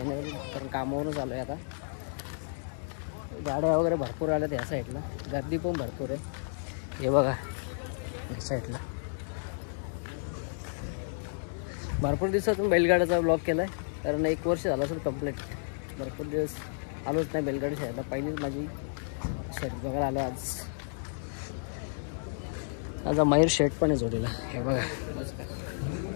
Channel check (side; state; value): right; silent; digital silence